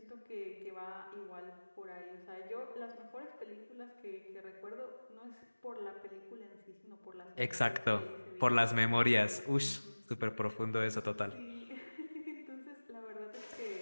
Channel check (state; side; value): inverted; both; correlation -1.00